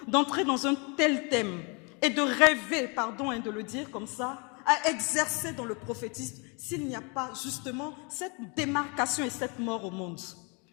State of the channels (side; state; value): right; quieter; 32.5 dB